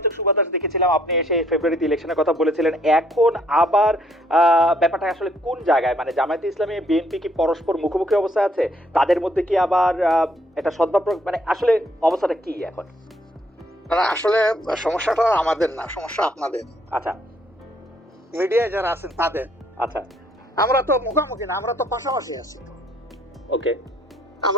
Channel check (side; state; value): both; normal; correlation 0.67